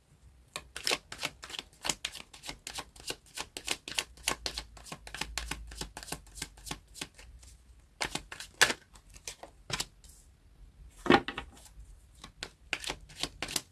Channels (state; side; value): identical; both; correlation 1.00